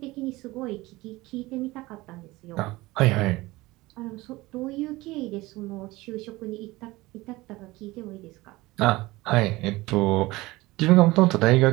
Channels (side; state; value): left; quieter; 20.2 dB